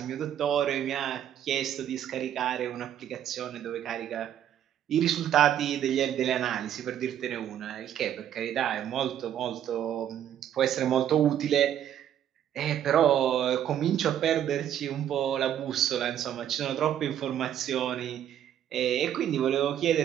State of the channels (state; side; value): quieter; left; 10.4 dB